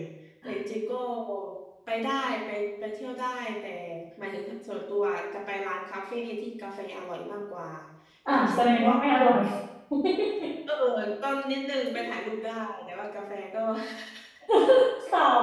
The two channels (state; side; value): identical; both; correlation 1.00